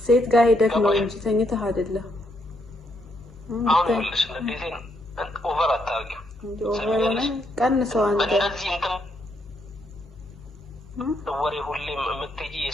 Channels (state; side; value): normal; both; correlation 0.75